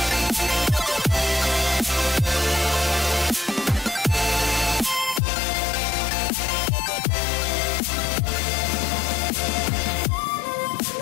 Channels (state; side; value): drops out; right; at 5.2 s